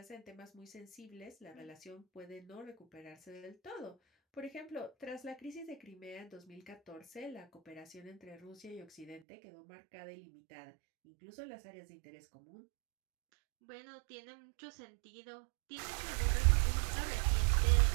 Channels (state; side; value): drops out; left; at 9.2 s